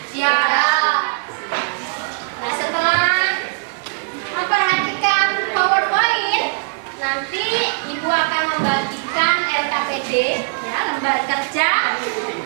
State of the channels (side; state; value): left; silent; digital silence